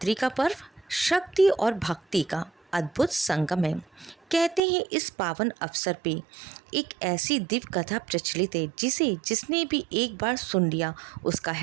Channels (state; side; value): drops out; left; at 4.6 s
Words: का पर्व शक्ति और भक्ति का अद्भुत संगम है। कहते हैं इस पावन अवसर पे एक ऐसी दिव्य कथा प्रचलित है जिसने भी एक बार सुन लिया उसका